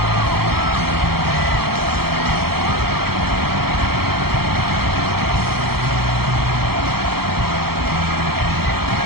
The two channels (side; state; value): left; late; 0.95 ms